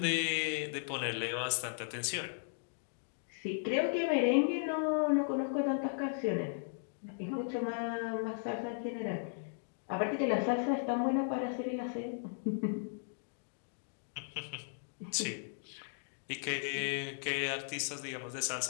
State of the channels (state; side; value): silent; right; digital silence